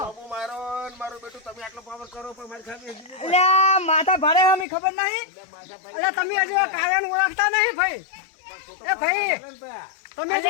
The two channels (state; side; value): drops out; right; at 4.7 s